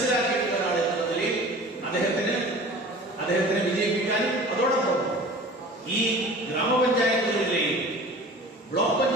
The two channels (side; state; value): both; normal; correlation 0.42